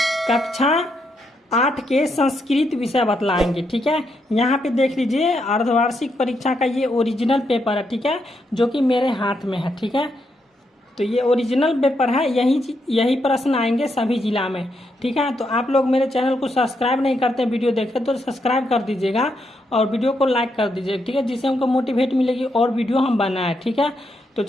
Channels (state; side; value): normal; both; correlation 0.80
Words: कक्षा 8 के संस्कृत विषय बतलाएंगे। ठीक है, यहाँ पे देख लीजिए अर्धवार्षिक परीक्षा का ये ओरिजिनल पेपर है। ठीक है, जो कि मेरे हाथ में है। ठीक है, तो ये ओरिजिनल पेपर है, यही प्रश्न आएंगे सभी जिला में। ठीक है, तो आप लोग मेरे चैनल को सब्सक्राइब नहीं करते वीडियो देखे तो सब्सक्राइब कर दीजिएगा और वीडियो को लाइक कर दीजिएगा। ठीक है, जिससे हमको मोटिवेट मिलेगी और वीडियो हम बनाए। ठीक है, तो